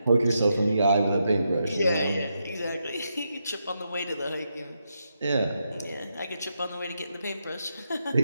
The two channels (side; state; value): both; inverted; correlation -0.82